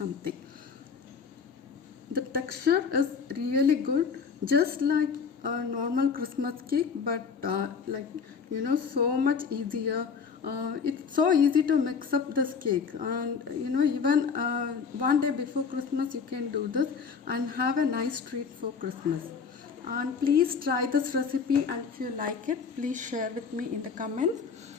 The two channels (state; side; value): quieter; right; 5.8 dB